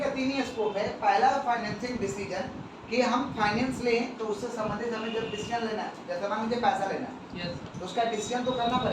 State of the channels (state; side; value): identical; both; correlation 1.00